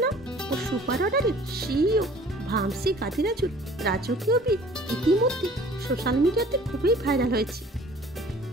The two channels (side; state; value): both; normal; correlation 0.50